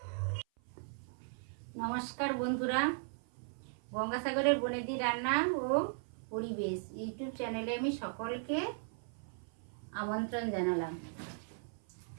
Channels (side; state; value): left; silent; 53 dB below the other